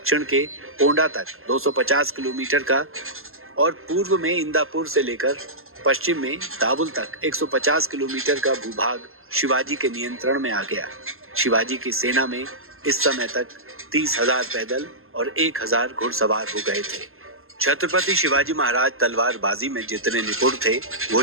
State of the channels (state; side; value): late; left; 0.61 ms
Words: के पोंडा तक 250 किलोमीटर का और पूर्व में इंदापुर से लेकर पश्चिम में दावुल तक 150 किलोमीटर का भूभाग शिवाजी के नियंत्रण में आ गया। शिवाजी की सेना में इस समय तक 30,000 पैदल और 1,000 घुड़सवार हो गए थे। छत्रपति शिवाजी महाराज तलवारबाजी में जितने निपुण थे,